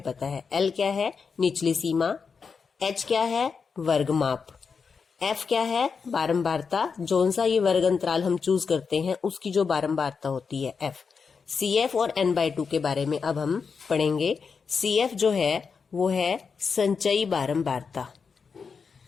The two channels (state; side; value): quieter; right; 5.5 dB